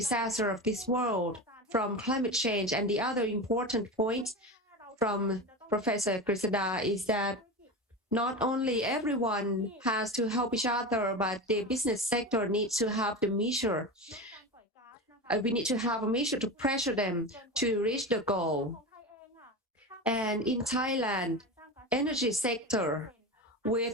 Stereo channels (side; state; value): both; normal; correlation 0.24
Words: of this world from climate change. And the other important point from Professor Grisada is that not only everyone has to help each other, but the business sector needs to have the measure. We need to have a measure to pressure them to reach the goal. And in Thailand, energy sector